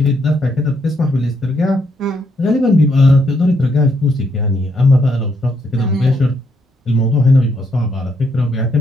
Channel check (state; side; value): normal; both; correlation 0.75